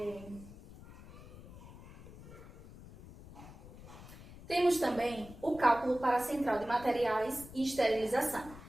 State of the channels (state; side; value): noise; left; rumble, 17 dB below the sound